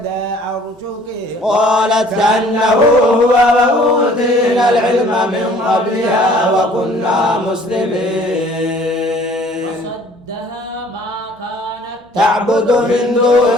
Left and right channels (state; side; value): normal; both; correlation 0.54